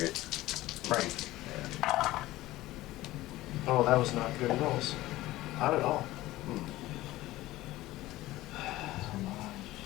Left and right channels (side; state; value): right; quieter; 17.0 dB